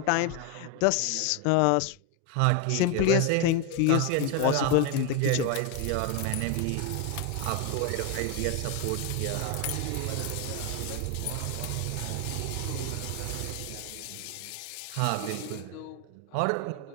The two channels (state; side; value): different; both; correlation 0.01